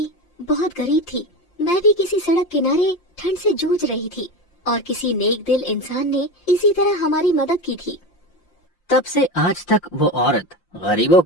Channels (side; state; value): right; late; 5.7 ms